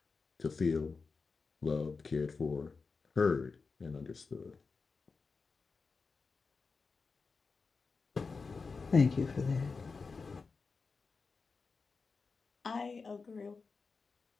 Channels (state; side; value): quieter; right; 4.6 dB